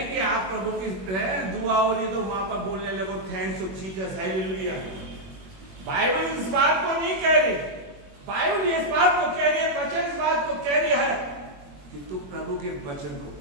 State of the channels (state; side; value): late; left; 21 ms